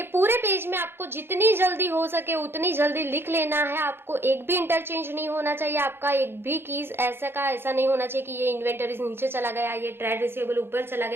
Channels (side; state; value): left; late; 0.11 ms